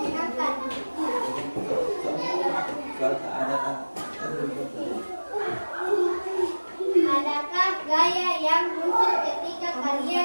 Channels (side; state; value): both; inverted; correlation -1.00